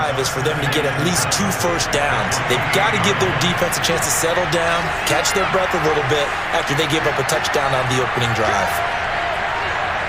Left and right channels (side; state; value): both; identical; correlation 1.00